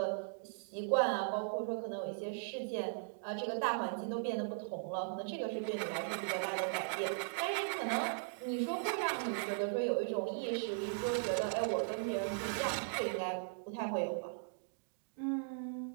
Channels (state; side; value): silent; left; digital silence